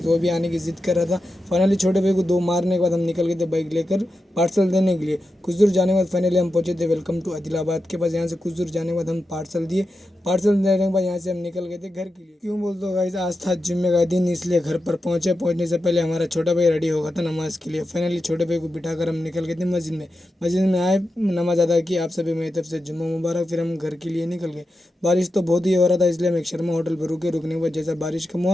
वो भी आने की जिद कर रहा था। फाइनली छोटे भाई को दो मारने के बाद हम निकल गए थे बाइक लेकर पार्सल देने के लिए। कुछ दूर जाने के बाद फाइनली हम पहुंचे थे वेलकम टू आदिलाबाद के पास। यहाँ से कुछ दूर जाने के बाद हम पार्सल दिए। पार्सल देने के बाद यहाँ से हम निकल गए थे घर के लिए। क्यों बोल दो गाइस, आज था जुम्मे का दिन, इसलिए घर पर पहुंचे। पहुंचने से पहले हमारा छोटा भाई रेडी हो गया था नमाज के लिए। फाइनली छोटे भाई को बिठाकर हम निकल गए थे मस्जिद में। मस्जिद में आए, नमाज अदा की। आप सभी मेरी तरफ से जुम्मा मुबारक। फिर हम घर के लिए निकल गए। बारिश तो बहुत ही हो रहा था, इसलिए हम एक शर्मा होटल पर रुके। रुकने के बाद जैसा बारिश कम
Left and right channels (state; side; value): normal; both; correlation 0.89